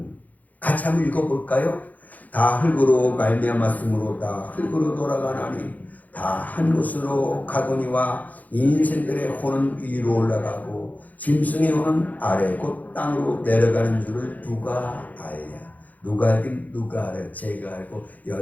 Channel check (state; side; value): late; right; 0.079 ms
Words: 같이 한번 읽어볼까요? 다 흙으로 말미암았으므로 다 흙으로 돌아가나니 다 한 곳으로 가거니와 인생들의 혼은 위로 올라가고 짐승의 혼은 아래 곧 땅으로 내려가는 줄을 누가 알냐? 누가 알긴 누가 알아요? 제가 알고